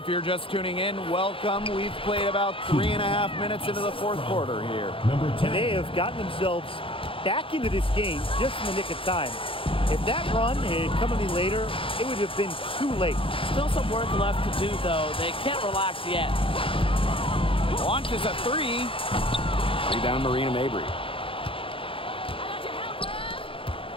you're just tuning in, welcome. We've played about 3.5 minutes into the fourth quarter here. Number 10. They have gotten themselves back into this game just in the nick of time. If that run had come any later, it would have been too late. Still some work left to do, though. They can't relax yet. Launches a three. Rebound Marina Mabry.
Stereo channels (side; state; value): right; late; 0.26 ms